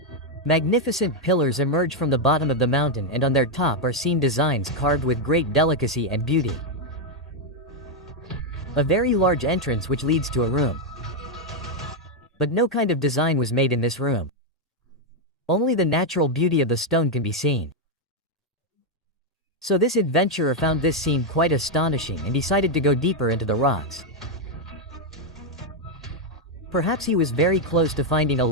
Magnificent pillars emerge from the bottom of the mountain and on their top are seen designs carved with great delicacy and beauty. A very large entrance which leads to a room. But no kind of design was made in this room. Only the natural beauty of the stone can be seen. So this adventurer found this scene quite astonishing and decided to go deeper into the rocks. Perhaps he was very close to finding a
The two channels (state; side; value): normal; both; correlation 0.02